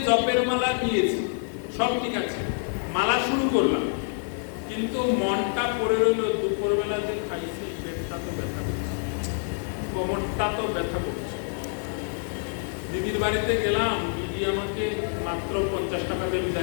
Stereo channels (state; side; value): silent; right; 60 dB below the other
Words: জপের মালা নিয়েছি, সব ঠিক আছে, মালা শুরু করলাম, কিন্তু মনটা পড়ে রইল দুপুরবেলা যে খাইছি, পেটটা তো ব্যথা করছে, কোমরটা তো ব্যথা করছে। দিদির বাড়িতে গেলাম, দিদি আমাকে মাত্র 50 টাকা দিয়ে